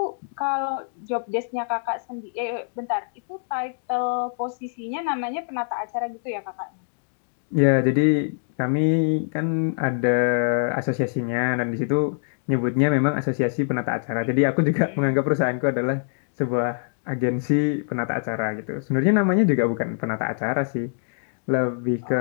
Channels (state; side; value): silent; right; digital silence